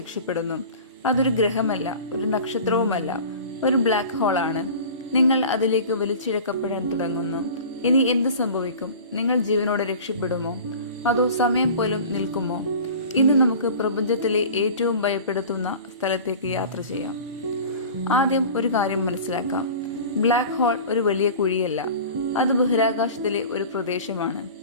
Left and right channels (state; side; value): inverted; both; correlation -0.38